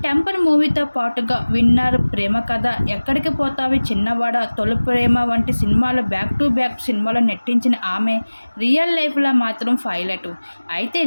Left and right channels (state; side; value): inverted; both; correlation -1.00